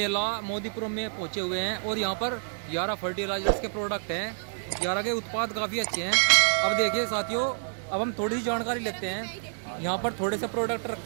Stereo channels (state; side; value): silent; left; 59 dB below the other